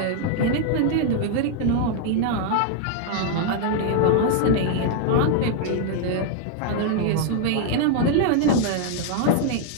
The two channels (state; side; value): different; both; correlation 0.00